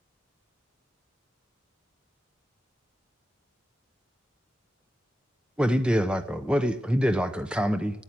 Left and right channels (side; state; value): both; normal; correlation 0.92